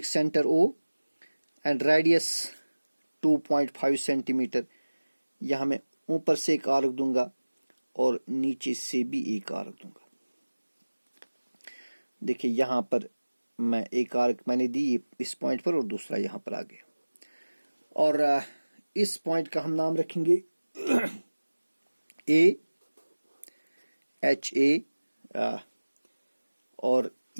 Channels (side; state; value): both; inverted; correlation -1.00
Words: centre O and radius 2.5 centimetre. यहां मैं ऊपर से एक आर्क दूंगा और नीचे से भी एक आर्क दूंगा। देखिए यहां पर मैं एक आर्क मैंने दी इस पॉइंट पर और दूसरा यहां पर आ गया। और इस पॉइंट का हम नाम रखेंगे ए एच ए, और